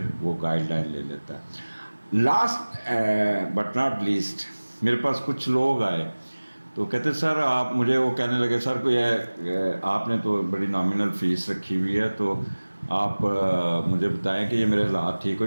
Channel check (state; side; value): inverted; both; correlation -1.00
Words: وہ گائیڈ لائن لے لیتا ہے. لاسٹ بٹ ناٹ لیسٹ میرے پاس کچھ لوگ آئے تو کہتے سر آپ مجھے وہ کہنے لگے سر کوئی آپ نے تو بڑی نامنل فیس رکھی ہوئی ہے تو آپ مجھے بتائیں کہ یہ میرے حالات ٹھیک ہو